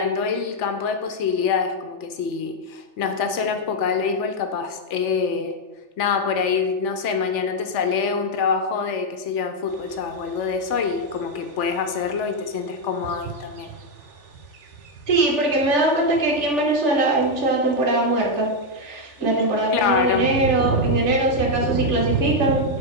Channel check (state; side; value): late; right; 3.4 ms